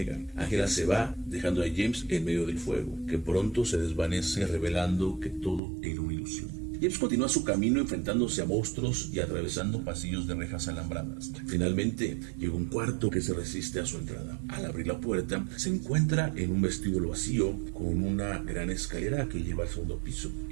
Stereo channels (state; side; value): drops out; left; at 5.6 s